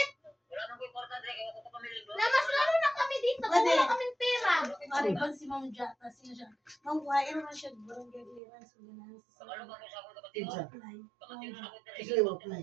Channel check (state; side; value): drops out; left; at 8.4 s